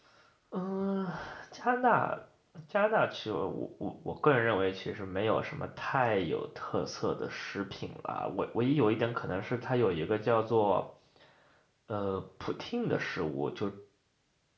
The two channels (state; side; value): identical; both; correlation 1.00